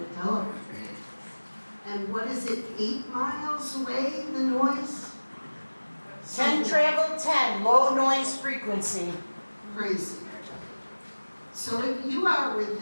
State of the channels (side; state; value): both; inverted; correlation -1.00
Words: tell her. And what is it, 8 miles away, the noise? 10 travel 10, low noise frequency. Crazy. So if you are